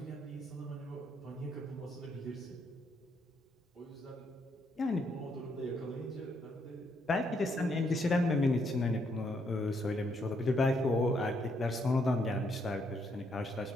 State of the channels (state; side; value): normal; both; correlation 0.74